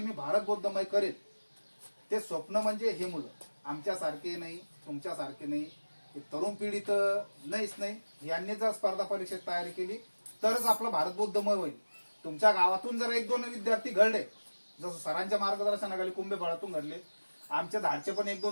भारत बौद्धमय करेल, ते स्वप्न म्हणजे हे मुलं आमच्यासारखे नाही, तुमच्यासारखे नाही, हे तरुण पिढी तर नाहीच नाही. यांनी जर स्पर्धा परीक्षेत तयारी केली तरच आपलं भारत बौद्धमय होईल. तुमच्या गावातून जर 1-2 विद्यार्थी घडले, जसं सरांच्या मार्गदर्शनाखाली कुंभेफळातून घडले, आमच्या धाडचे पण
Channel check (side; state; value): both; inverted; correlation -1.00